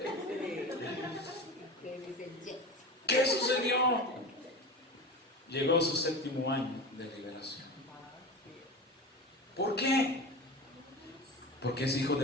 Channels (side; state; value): both; normal; correlation 0.29